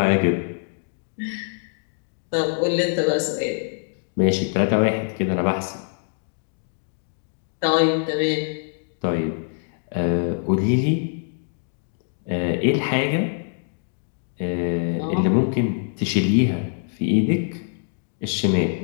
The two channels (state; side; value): silent; right; digital silence